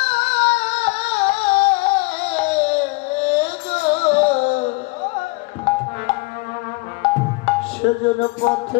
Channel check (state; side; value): quieter; right; 26.6 dB